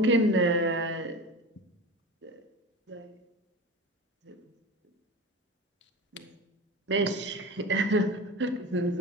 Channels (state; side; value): normal; both; correlation 0.31